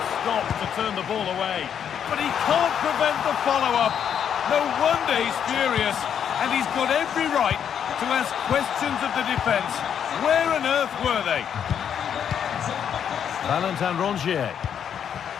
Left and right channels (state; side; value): quieter; right; 8.5 dB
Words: stop to turn the ball away. But he can't prevent the follow-up. No wonder he's furious. And he's got every right to ask questions of the defence. Where on earth were they? Valentin Rongier.